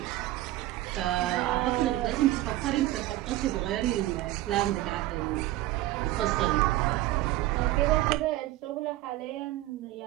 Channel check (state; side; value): quieter; left; 16.3 dB